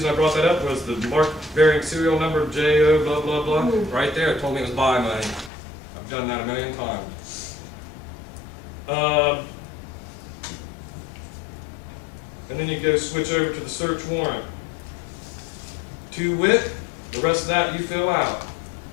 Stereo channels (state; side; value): drops out; right; at 5.5 s